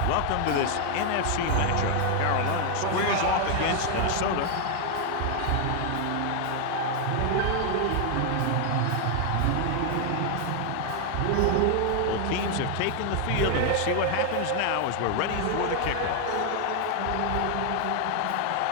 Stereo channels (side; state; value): both; different; correlation 0.00